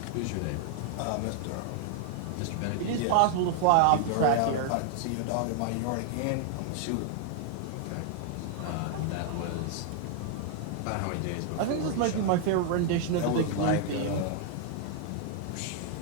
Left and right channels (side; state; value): both; different; correlation 0.00